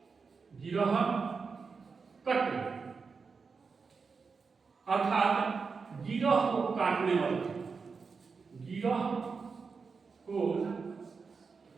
गिरहकट अर्थात गिरह को काटने वाला, गिरह को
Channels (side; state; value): left; quieter; 5.0 dB